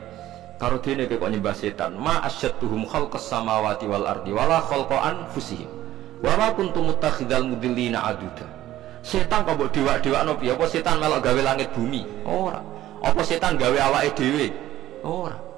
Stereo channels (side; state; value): left; quieter; 14.1 dB